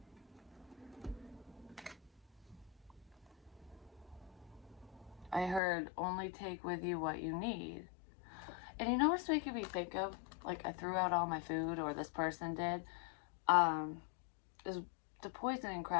I heard only take with you what you need. And you know what's making me think of? Like, I threw out all my food, or this person did, is the poisoning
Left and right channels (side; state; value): right; drops out; at 5.6 s